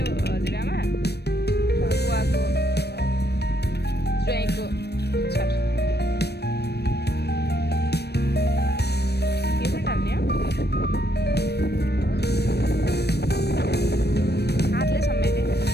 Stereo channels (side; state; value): right; late; 0.47 ms